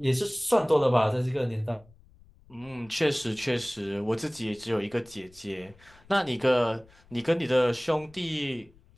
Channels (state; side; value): noise; left; rumble, 27 dB below the sound